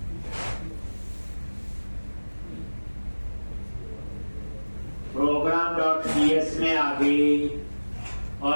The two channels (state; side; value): inverted; both; correlation -1.00